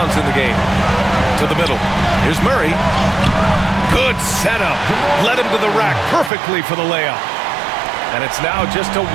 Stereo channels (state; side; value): drops out; left; at 6.3 s